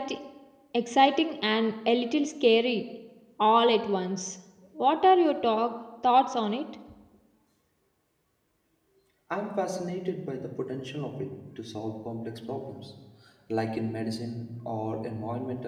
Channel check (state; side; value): identical; both; correlation 1.00